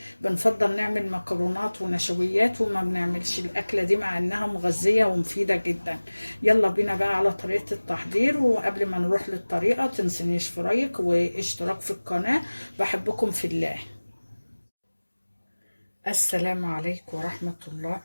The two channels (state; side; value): inverted; both; correlation -1.00